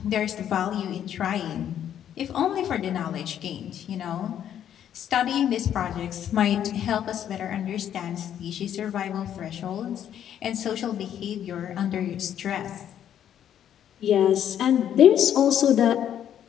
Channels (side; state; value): right; quieter; 10.0 dB